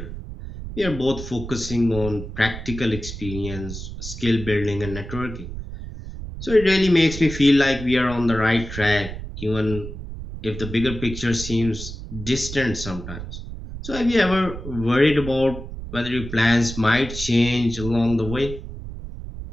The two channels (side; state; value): right; noise; rumble, 9 dB below the sound